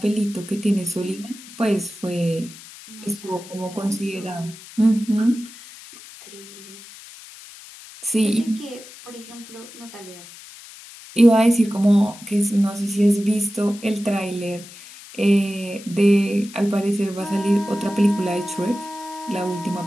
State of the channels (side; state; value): left; noise; hiss, 18 dB below the sound